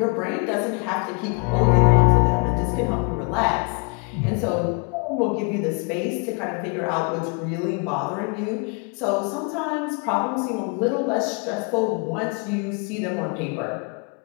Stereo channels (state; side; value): quieter; right; 32.3 dB